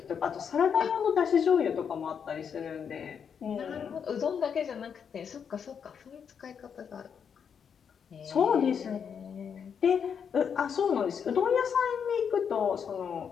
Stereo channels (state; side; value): quieter; right; 7.2 dB